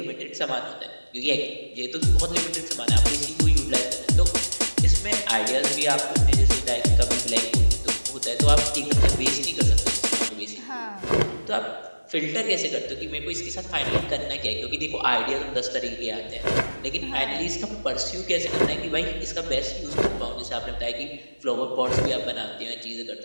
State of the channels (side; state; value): both; inverted; correlation -1.00